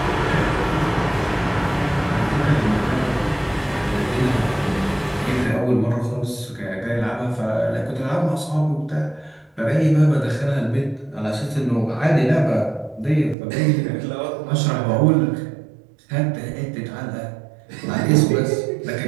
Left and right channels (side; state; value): left; drops out; at 13.4 s